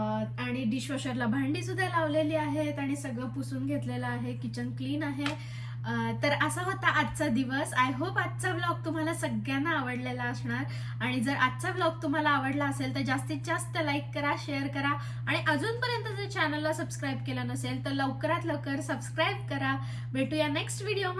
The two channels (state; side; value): identical; both; correlation 1.00